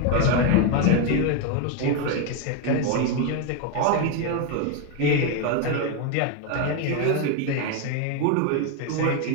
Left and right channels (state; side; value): different; both; correlation 0.02